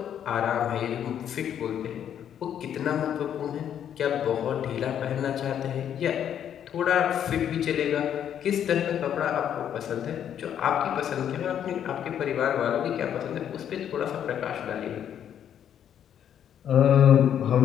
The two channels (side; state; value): right; quieter; 9.5 dB